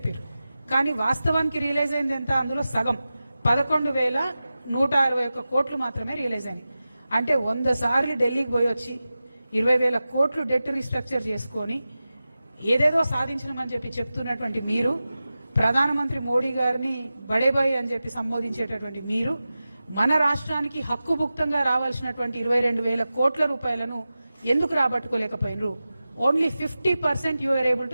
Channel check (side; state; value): both; inverted; correlation -0.95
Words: కానీ వాస్తవానికి రియలైజ్ అయింది ఎంత, అందులో సగం 11,161 కోట్లు మాత్రమే రియలైజ్ అయినాయి. అంటే 100 సార్లు ఢిల్లీకి పోయి వచ్చి 20,000 కోట్లు డెట్ రీస్ట్రక్చర్ చేసుకొని ఏదేదో సాధించమని చెప్పి చెప్తున్నటువంటి మీరు, ప్రధానమంత్రి మోడీ గారిని బడేబాయి అని చెప్పి సంబోధించేటటువంటి మీరు, మన రాష్ట్రానికి హక్కుభుక్తంగా రావాల్సినటువంటి 22,000 కోట్ల రూపాయలను ఎందుకు రాబట్టుకోలేకపోయినరు? Only 50% you are able